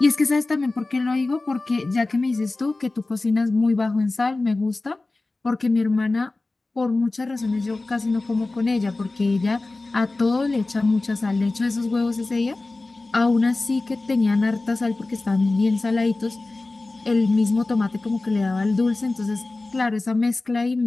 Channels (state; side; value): quieter; right; 3.2 dB